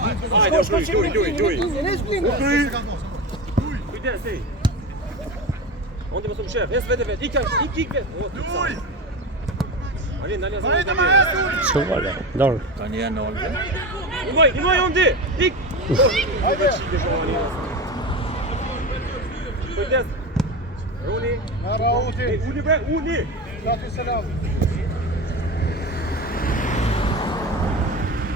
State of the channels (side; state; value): both; normal; correlation 0.23